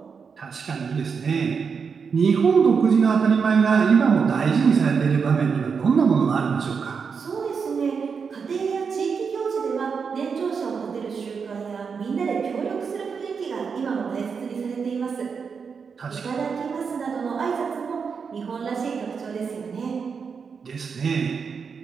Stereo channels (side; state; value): left; quieter; 5.8 dB